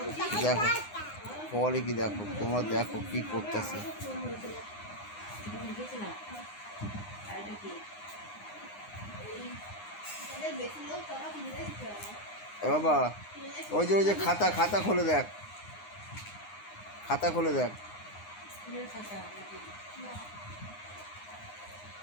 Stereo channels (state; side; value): late; right; 9.7 ms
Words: দেখো বলে কি, দেখো তোমরা দেখো কি করতেছে। বাবা ওই যে খাতা খাতা খুলে দেখ, খাতা খুলে দেখ।